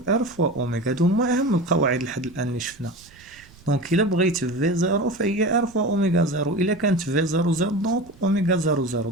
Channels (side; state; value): right; noise; rumble, 25 dB below the sound